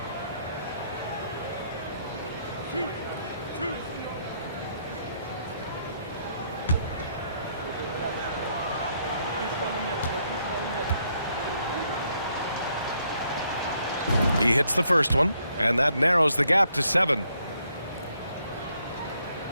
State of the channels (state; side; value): inverted; both; correlation -0.72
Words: He hits the first one, and that narrows the gap to 7.